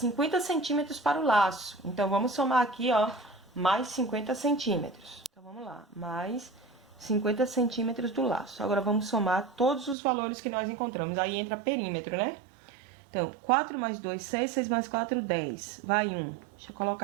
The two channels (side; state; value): left; drops out; at 10.0 s